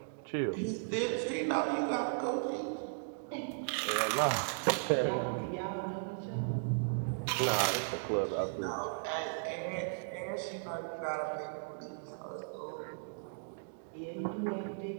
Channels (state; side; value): silent; left; digital silence